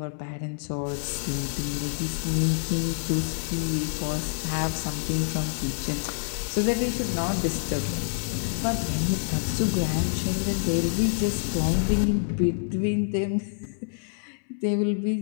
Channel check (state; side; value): silent; right; 60 dB below the other